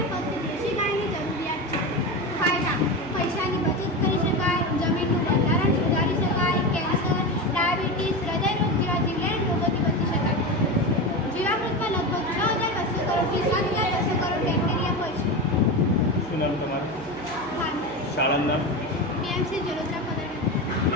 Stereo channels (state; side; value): noise; right; hum, 17 dB below the sound